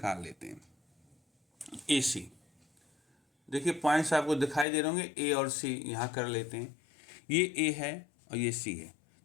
लेते हैं। ए सी देखिए पॉइंट्स आपको दिखाई दे रहे होंगे, ए और सी यहाँ कर लेते हैं। ये ए है और ये सी है,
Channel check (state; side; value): drops out; right; at 4.7 s